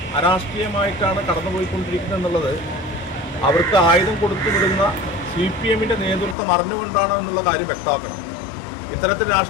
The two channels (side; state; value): right; drops out; at 6.4 s